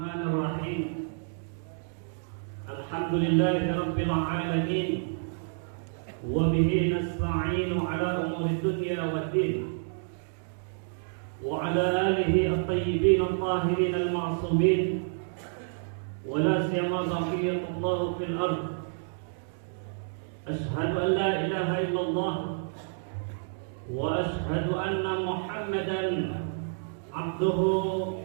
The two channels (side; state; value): left; silent; digital silence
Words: Rabbil Alamin. Wa bihi nasta'inu ala umuri dunya waddin. Wa ala alihi at-tayyibin at-tahirin al-ma'sumin. Wa la siyama baqiyatullah fil ard. Ashhadu an la ilaha illallah. Wa ashhadu anna Muhammadan abduhu